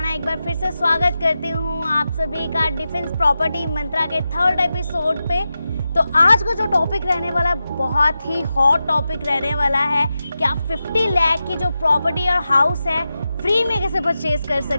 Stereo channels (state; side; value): inverted; both; correlation -0.91